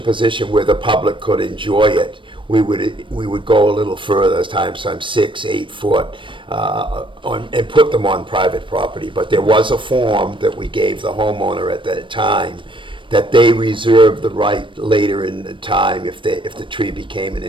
position where the public could enjoy it, we would go a little further, sometimes 6, 8 foot, and put them on private property. But there was a form that we gave the homeowner at that time that they reserved the right later in the time, if the tree became an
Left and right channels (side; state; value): left; late; 0.24 ms